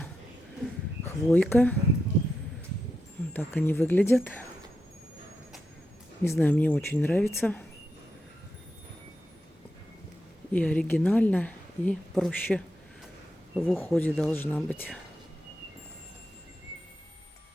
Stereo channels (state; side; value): normal; both; correlation 0.86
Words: хвойка. Вот так они выглядят. Не знаю, мне очень нравится. И оригинально, и проще в уходе должна быть.